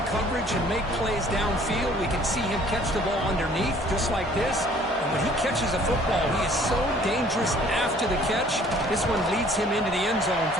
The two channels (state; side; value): normal; both; correlation 0.56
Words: coverage and make plays downfield. We can see him catch the ball underneath just like this. And when he catches a football, he is so dangerous after the catch. This one leads him into the end zone